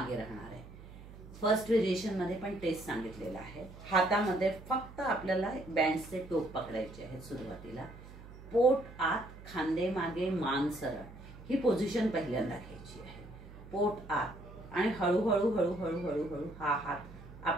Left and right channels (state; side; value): noise; right; hum, 16 dB below the sound